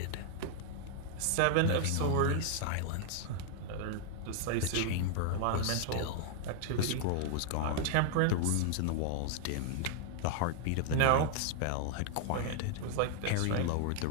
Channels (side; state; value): both; different; correlation 0.00